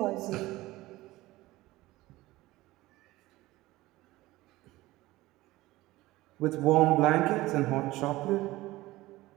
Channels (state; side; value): quieter; left; 18.3 dB